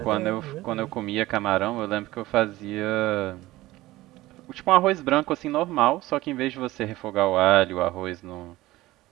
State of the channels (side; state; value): left; quieter; 17.7 dB